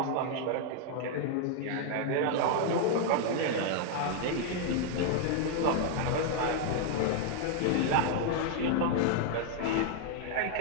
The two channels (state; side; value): different; both; correlation 0.00